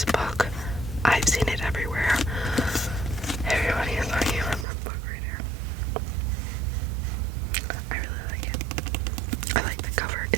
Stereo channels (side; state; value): left; drops out; at 4.7 s